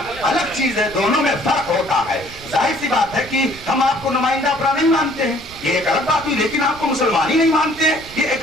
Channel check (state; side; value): noise; right; rumble, 19 dB below the sound